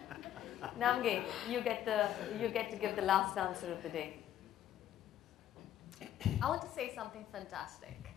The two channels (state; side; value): quieter; right; 11.4 dB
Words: Namge, you get to give the last answer of the day. I want to say something fantastic,